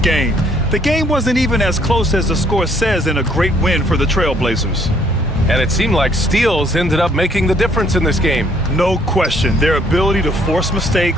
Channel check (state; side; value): normal; both; correlation 0.65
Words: The game wasn't even as close as the score says in a great win for the Trailblazers. And it seemed like steals ended up making the difference in this game. No question. Their ability to force